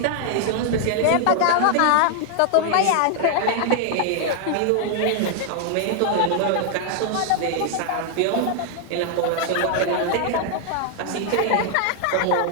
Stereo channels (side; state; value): both; different; correlation 0.00